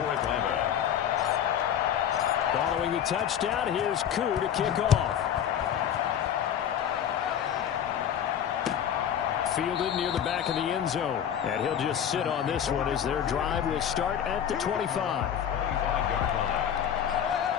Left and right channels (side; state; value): right; quieter; 9.3 dB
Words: Atlanta. Following the touchdown, here's Koo to kick off. Fielded near the back of the end zone. And he'll just sit on this one as their drive will start at the 25. 25-yard line.